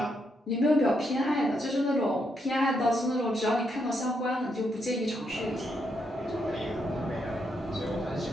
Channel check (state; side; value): normal; both; correlation 0.78